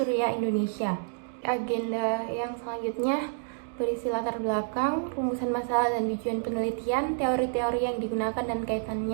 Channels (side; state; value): left; silent; digital silence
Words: Indonesia. Agenda yang selanjutnya berisi latar belakang, rumusan masalah dan tujuan penelitian, teori-teori yang digunakan dan